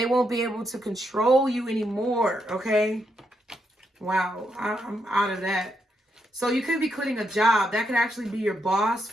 won't be able to control you anymore. Okay. Wow. I'm out of that. So you could be quitting a job. That could actually be your boss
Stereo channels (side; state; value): both; normal; correlation 0.80